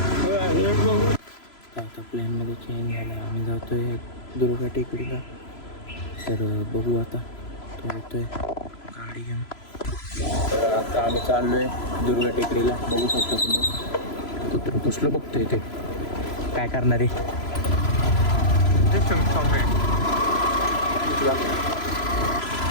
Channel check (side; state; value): right; late; 3.0 ms